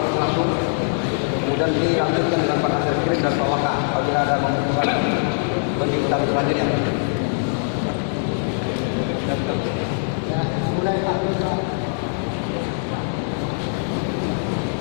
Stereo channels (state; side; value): silent; right; digital silence